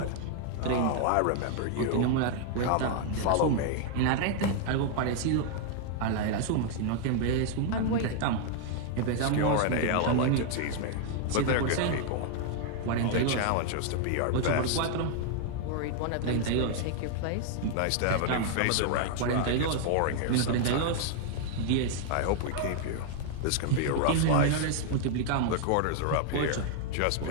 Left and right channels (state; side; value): different; both; correlation 0.00